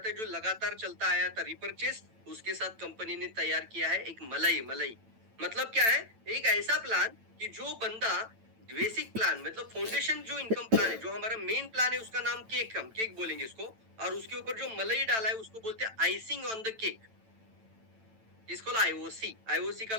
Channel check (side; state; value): left; late; 9.0 ms